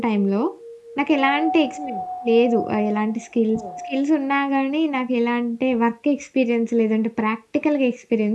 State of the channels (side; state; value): both; identical; correlation 1.00